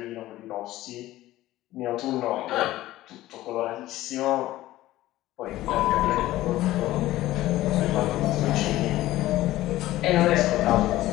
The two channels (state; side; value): quieter; right; 15.8 dB